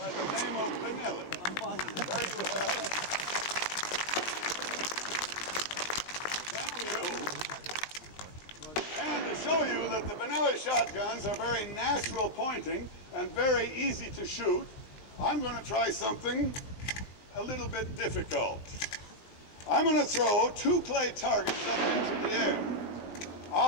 the name of Benelli. There you have it. Thank you. And to show you that the Benelli shotguns are very natural pointing and very easy to shoot, I'm going to try something a little bit difficult. I'm going to throw two clay targets up into the air.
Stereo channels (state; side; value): late; right; 19 ms